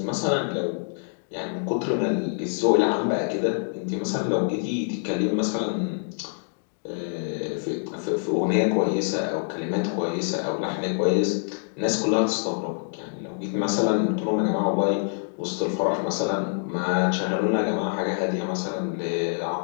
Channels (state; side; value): silent; right; digital silence